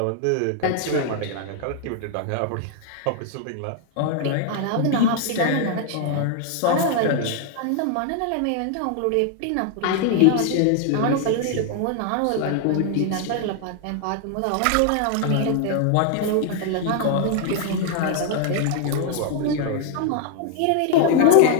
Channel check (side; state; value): both; different; correlation 0.00